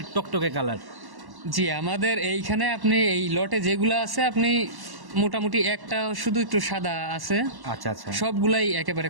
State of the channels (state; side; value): late; left; 1.1 ms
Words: টকটকে কালার। জি, আমাদের এইখানে আপনি এই লটে যেগুলো আছে আপনি মোটামুটি একটা শুধু একটু সাদা আছে, আচ্ছা আচ্ছা, সবগুলাই একেবারে